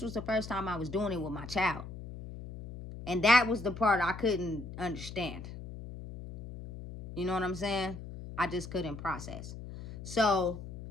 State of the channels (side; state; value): left; noise; hum, 11 dB below the sound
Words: was the first time I was doing it with my child. And that was the part I couldn't understand. You know what I'm saying? I just couldn't process. So